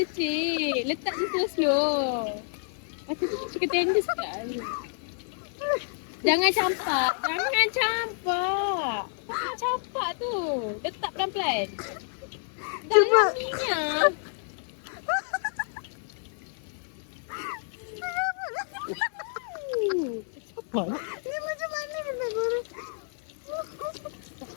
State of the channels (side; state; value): right; silent; 59 dB below the other